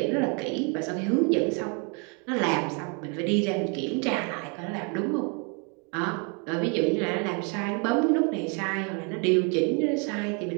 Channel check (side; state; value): left; quieter; 35.4 dB